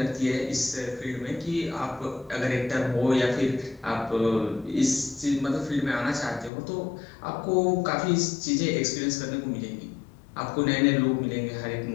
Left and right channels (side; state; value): right; drops out; at 6.5 s